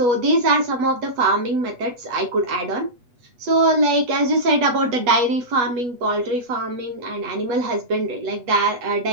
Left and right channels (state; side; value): late; left; 8.1 ms